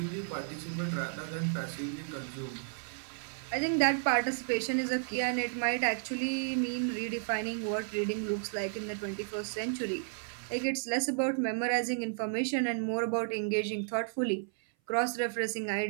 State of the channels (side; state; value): left; silent; 56 dB below the other